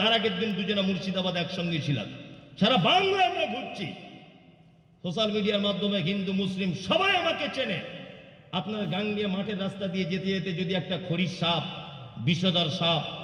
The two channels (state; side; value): identical; both; correlation 1.00